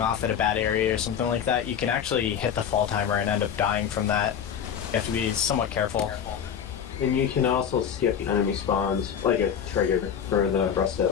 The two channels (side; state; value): right; quieter; 8.2 dB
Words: at a bad area or something like that, you can actually hit the fall timer and end up dying from that. You have to be somewhat careful. And you can also skip enemy spawns, like a trigger for the rest of